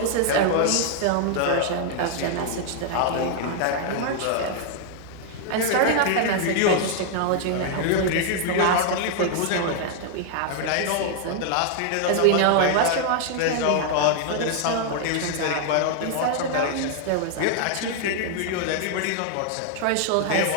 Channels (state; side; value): different; both; correlation 0.00